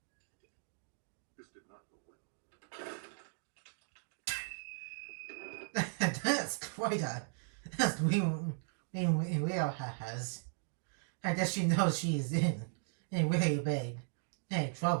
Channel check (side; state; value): left; silent; digital silence